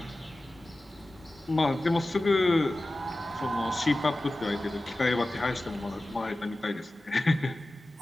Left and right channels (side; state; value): both; normal; correlation 0.96